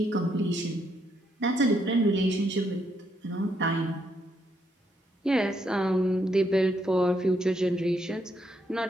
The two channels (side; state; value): both; normal; correlation 0.75